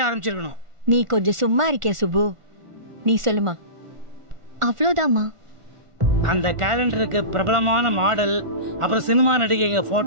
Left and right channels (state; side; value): late; left; 1.5 ms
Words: ஆரம்பிச்சிருக்கணும். நீ கொஞ்சம் சும்மா இருக்கே சுப்பு. நீ சொல்லுமா. அவ்வளோதாம்மா. அந்த கேலண்டருக்கு பிரபலமான மாடல், அப்புறம் சினிமா நடிகைங்க